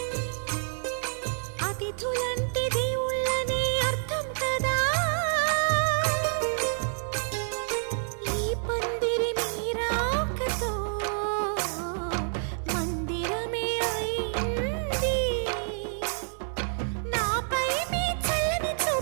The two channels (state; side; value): silent; left; 57 dB below the other